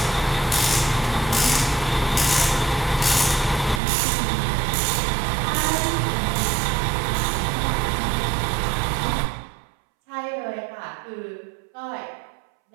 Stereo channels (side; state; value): left; drops out; at 3.8 s